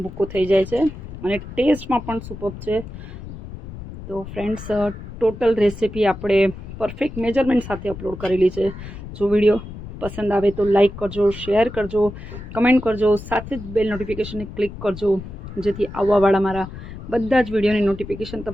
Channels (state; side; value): noise; left; rumble, 12 dB below the sound